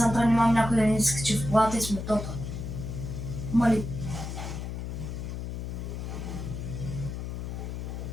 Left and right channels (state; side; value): noise; left; hum, 5 dB below the sound